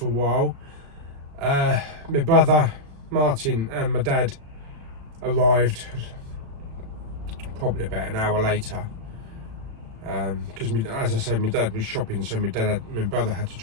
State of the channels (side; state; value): left; late; 36 ms